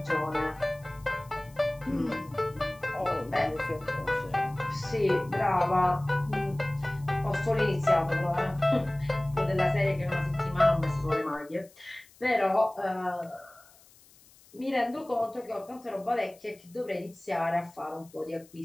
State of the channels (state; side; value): noise; left; hiss, 26 dB below the sound